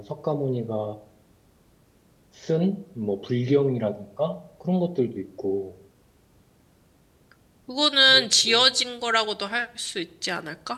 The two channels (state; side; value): identical; both; correlation 1.00